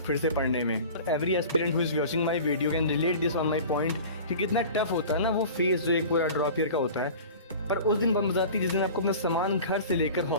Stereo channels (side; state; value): both; inverted; correlation -0.39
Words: फिर से पढ़ने में. Every aspirant who is watching my video can relate this on my point कि कितना टफ होता है ना वो फेज जो एक पूरा ड्रॉप ईयर का होता है. पर उस दिन बन जाती है जिस दिन आपको अपना सामान घर से लेकर